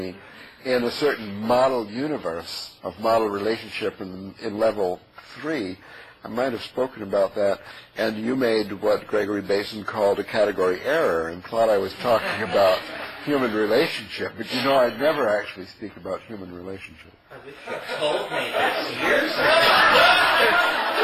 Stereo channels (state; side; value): identical; both; correlation 1.00